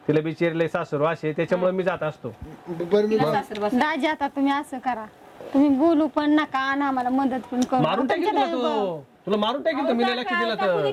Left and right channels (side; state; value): both; identical; correlation 1.00